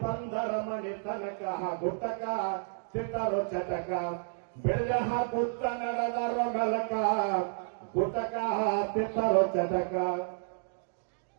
ಬಂದರ ಮನೆ ತನಕ ಗುಟಕ ತಿಂತಾರೋ ಚಟಕ ಬೆಳೆ ಹಾಕುತ್ತ ನಡೆದಾರೋ ಮೆಲಕ ಗುಟಕ ತಿಂತಾರೋ ಚಟಕ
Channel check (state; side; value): silent; left; digital silence